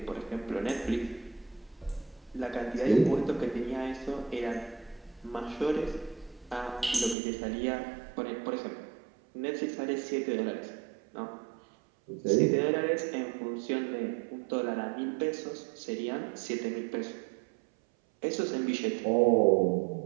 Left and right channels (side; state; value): left; drops out; at 7.2 s